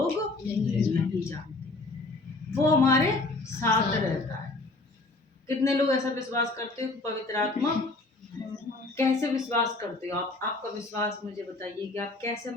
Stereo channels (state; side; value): quieter; right; 3.2 dB